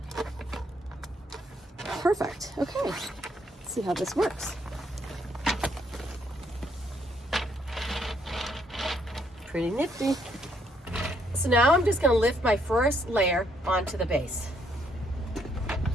Perfect. Okay. Let's see how this works. Pretty nifty. So now I'm just going to lift my first layer onto the base.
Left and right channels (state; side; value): normal; both; correlation 0.71